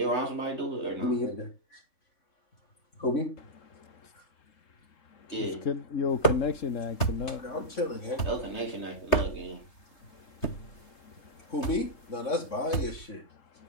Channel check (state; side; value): late; right; 3.3 ms